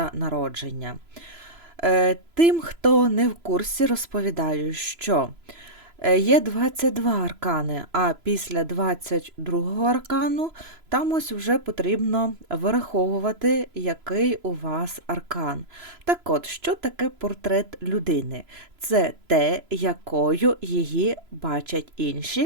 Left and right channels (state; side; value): late; left; 3.0 ms